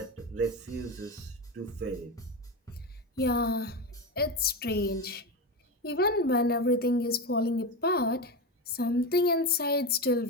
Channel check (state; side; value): normal; both; correlation 0.18